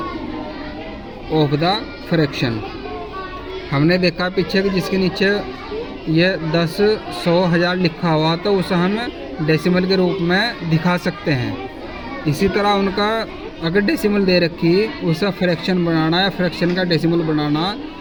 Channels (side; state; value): both; identical; correlation 1.00